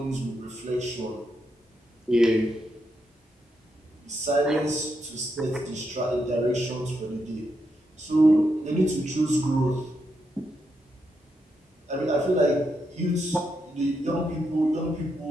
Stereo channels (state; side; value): normal; both; correlation 0.82